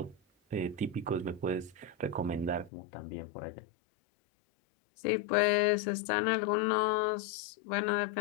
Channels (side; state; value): right; drops out; at 2.7 s